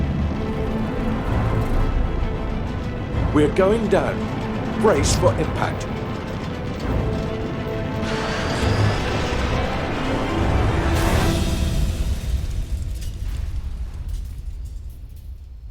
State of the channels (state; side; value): identical; both; correlation 1.00